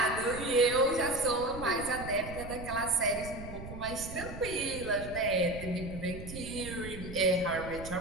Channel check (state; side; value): noise; right; rumble, 11 dB below the sound